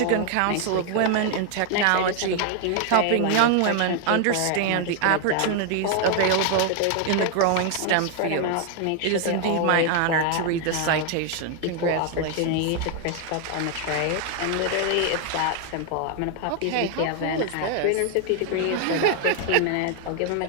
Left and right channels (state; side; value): different; both; correlation 0.00